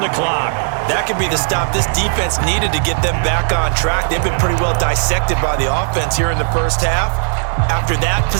the clock. That could be the stop this defense needed to get them back on track. They've been pretty well dissected by the offense here in the first half. After that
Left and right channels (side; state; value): left; silent; 59 dB below the other